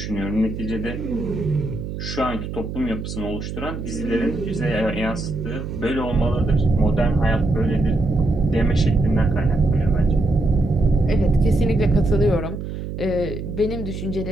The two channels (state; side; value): noise; right; hum, 7 dB below the sound